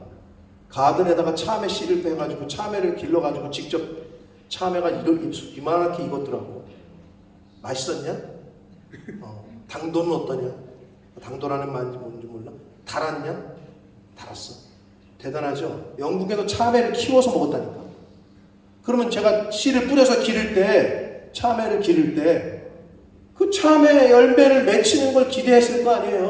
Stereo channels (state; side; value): identical; both; correlation 1.00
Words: 가든에다가 참외 씨를 빼가지고 참외를 길러가지고 직접 참외가 이만하게 익었더라고. 맛있었냐? 당도는 어떠냐? 당도라는 말인지 뭔지 몰라? 달았냐? 달았어. 대단하죠? 영국에서 참외를 키워서 먹었다니까. 그러면 제가 씨를 뿌려서 기를 때, 참외를 기를 때 그 참외 열매를 맺히는 걸 기대했을 거